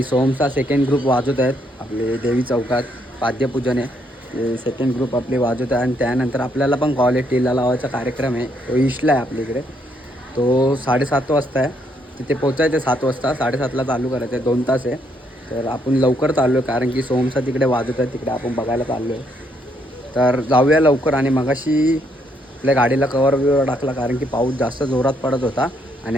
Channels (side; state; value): both; normal; correlation 0.73